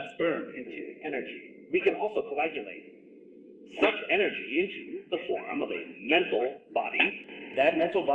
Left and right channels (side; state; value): both; identical; correlation 1.00